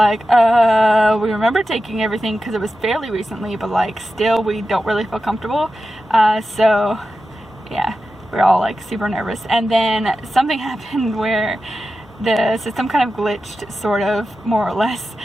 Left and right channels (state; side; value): normal; both; correlation 0.92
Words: we remember taking everything because it was fairly recently, but like still we don't really feel comfortable. So yeah, we're all like super nervous. And then something happened where the system kind of glitched, sort of, more or less,